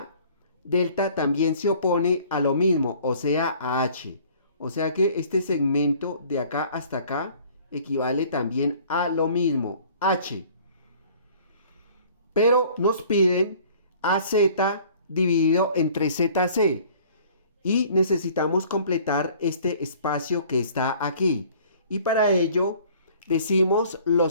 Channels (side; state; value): both; inverted; correlation -0.52